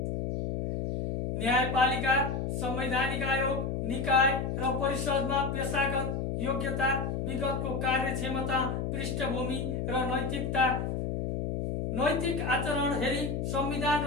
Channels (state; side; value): noise; left; hum, 1 dB below the sound